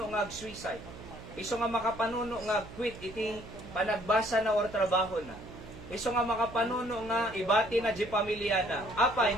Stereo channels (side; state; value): right; noise; hum, 15 dB below the sound